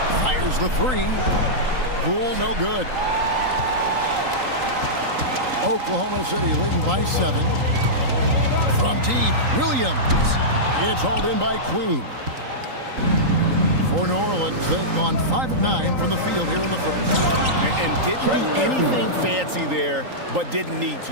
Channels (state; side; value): late; left; 3.8 ms